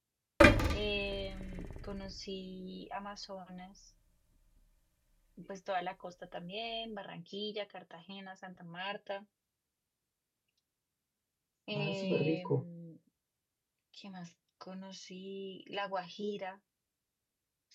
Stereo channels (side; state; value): both; identical; correlation 1.00